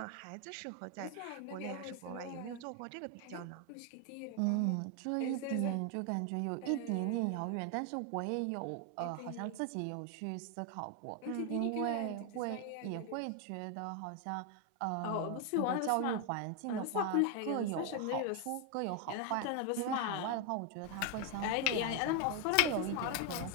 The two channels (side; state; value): both; different; correlation 0.01